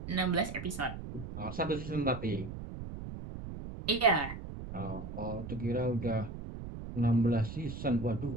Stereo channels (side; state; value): right; noise; rumble, 9 dB below the sound